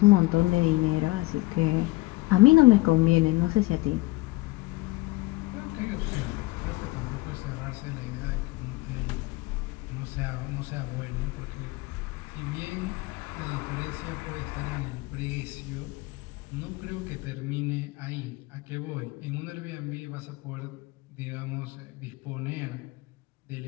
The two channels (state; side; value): quieter; right; 21.3 dB